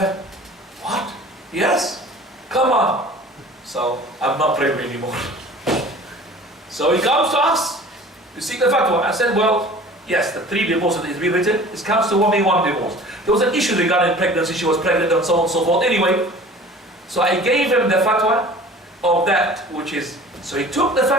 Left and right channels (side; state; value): both; normal; correlation 0.44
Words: What? Yes? Come on. So I'm not praying anymore. So he comes to us to seek the fatwa. I said, well, yes, the 3 divorces is being written. It comes to 1 divorce. There was an issue regarding pregnancy. She was pregnant and so on and so forth. Anyway, so I gave him the fatwa of that, which is, so he took the